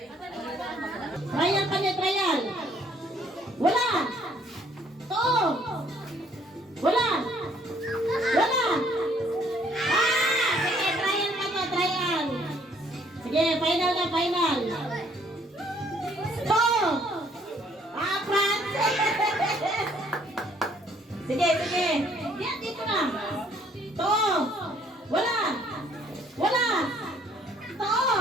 Trial kanya, trial. Wala. To. Wala. Wala. Sige, trial kanya, trial. Sige, final na, final. To. Frans. Sige, sige. Yan, dito na. To. Wala. Wala. To.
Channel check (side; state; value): both; normal; correlation 0.63